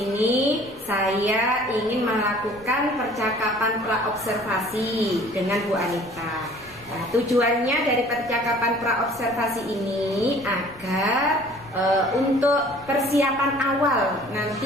saya ingin melakukan percakapan praobservasi dengan Bu Anita. Nah, tujuannya dari percakapan praobservasi ini agar untuk persiapan awal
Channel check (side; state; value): left; noise; rumble, 24 dB below the sound